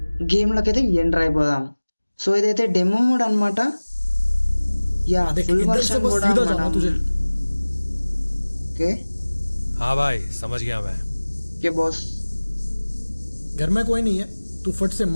గేమ్లోకి అయితే ఎంటర్ అయిపోదాం. సో ఇదైతే డెమో మోడ్ అనమాట. యా ఫుల్ వర్షన్ కూడా ఓకే. हाँ भाई समझ गया मैं. Okay boss. घर में कोई नहीं है, तू फट से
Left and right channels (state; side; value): inverted; both; correlation -1.00